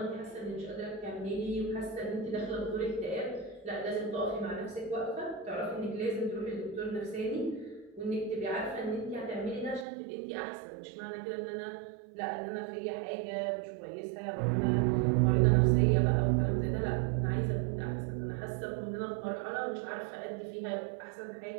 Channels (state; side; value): drops out; left; at 9.9 s